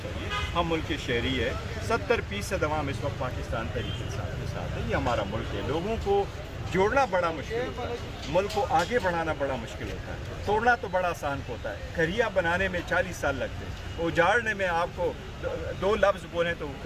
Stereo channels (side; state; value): both; identical; correlation 1.00